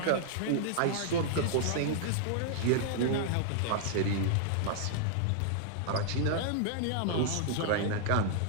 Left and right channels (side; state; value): both; different; correlation -0.01